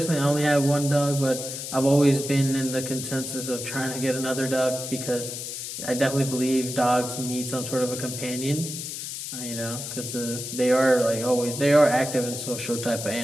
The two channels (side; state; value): left; noise; hiss, 7 dB below the sound